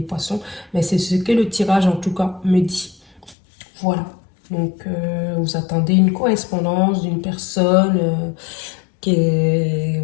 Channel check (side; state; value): right; drops out; at 3.4 s